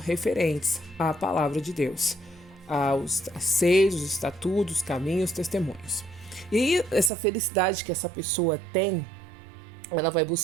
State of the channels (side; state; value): left; drops out; at 7.1 s